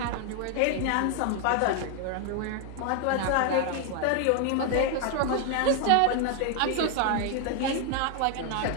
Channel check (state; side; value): different; both; correlation 0.00